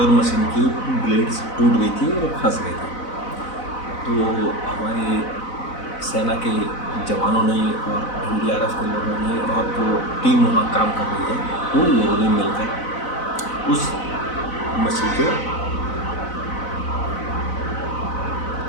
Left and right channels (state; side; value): late; right; 4.0 ms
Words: मशीन की ब्लेड्स टूट गई थी और फंस गई थी। तो हमारे सेना के जवानों ने और एनडीआरएफ के लोगों ने और जो टीम वहाँ काम कर रही है उन लोगों ने मिलकर उस मछली के